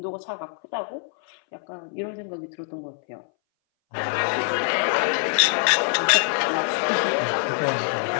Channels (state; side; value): silent; right; 60 dB below the other